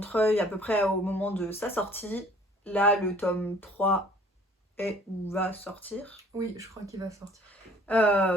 à peu près au moment de sa sortie. Là, le tome 3 est ou va sortir. Oui, je crois qu'il va sortir.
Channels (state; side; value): normal; both; correlation 0.54